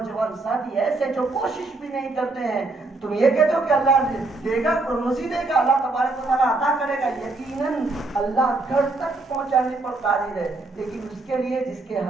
ساتھی ایسے جو کوشش بھی نہیں کرتے ہیں، تم یہ کہتے ہو کہ اللہ دے گا، روزی دے گا، اللہ تبارک و تعالیٰ عطا کرے گا، یقیناً اللہ گھر تک پہنچانے پر قادر ہے، لیکن اس کے لیے جس کے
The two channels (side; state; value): left; quieter; 3.3 dB